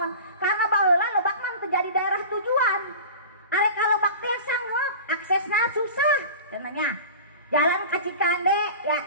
Karena baheula Lebak mah terjadi daerah tujuan. Arek ka Lebak teh sanggup aksesna susah cenanya. Jalan ka Cikande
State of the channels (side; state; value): both; inverted; correlation -0.36